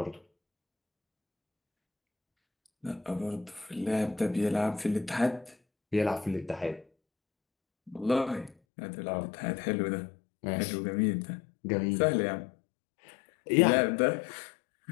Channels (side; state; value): right; drops out; at 8.6 s